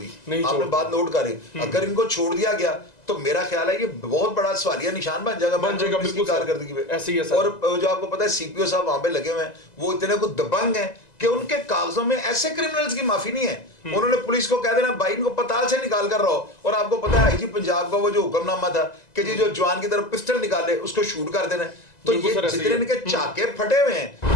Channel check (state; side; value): late; right; 1.9 ms